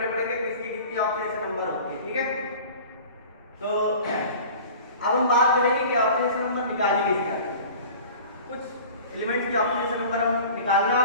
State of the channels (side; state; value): both; inverted; correlation -0.42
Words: पड़ेंगे किसकी कितनी ऑक्सीडेशन नंबर होती है। ठीक है, तो अब हम बात करेंगे कि ऑक्सीडेशन नंबर निकाली किस तरह। कुछ एलिमेंट्स की ऑक्सीडेशन नंबर हम निकालना